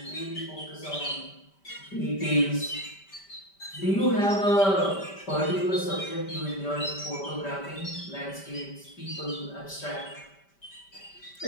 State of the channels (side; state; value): right; late; 5.1 ms